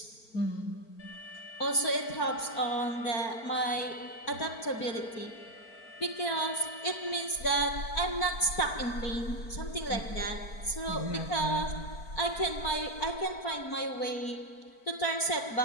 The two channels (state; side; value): late; right; 4.5 ms